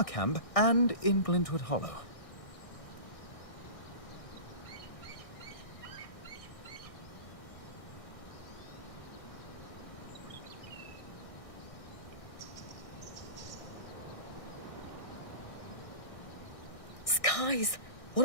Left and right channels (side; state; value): right; late; 1.6 ms